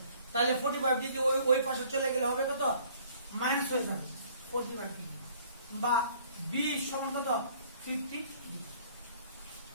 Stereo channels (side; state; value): both; inverted; correlation -0.57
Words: তাহলে 45 ডিগ্রি ওই পাশে চলে গেলে হবে কত মাইনাস হয়ে যাবে 45 ডিগ্রি বা বি সমান কত 50 ডিগ্রি।